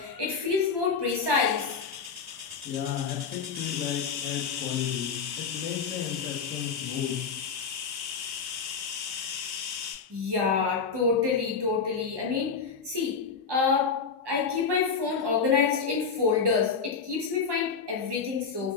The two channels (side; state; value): right; quieter; 5.7 dB